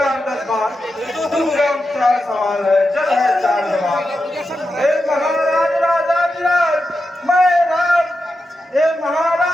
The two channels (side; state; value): both; normal; correlation 0.89